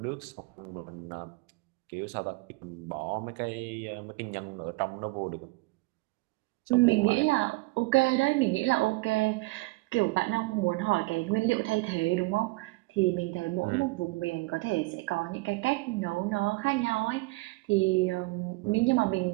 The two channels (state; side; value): quieter; left; 23.4 dB